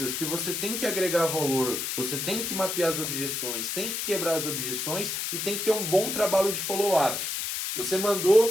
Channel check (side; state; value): left; noise; hiss, 2 dB below the sound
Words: que você tem que agregar valor, você tem que mapear as objeções, tem que quebrar as objeções e tem que ter um bom trabalho de follow-up. Você